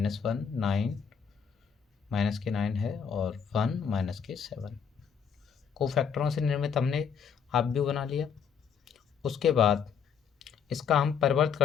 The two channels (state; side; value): quieter; right; 6.9 dB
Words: 9 माइनस के 9 है और 1 माइनस के 7। कोफैक्टरों से निर्मित हमने अपव्यू बना लिया। उसके बाद इसका हम परिवर्त